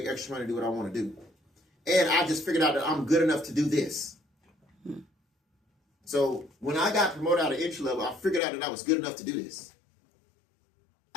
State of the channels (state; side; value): drops out; right; at 8.4 s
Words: extra money to do what I want to do. And I just figured out that I'm good enough to do this. So when I got promoted out of entry level, I figured out that I was good enough to do this.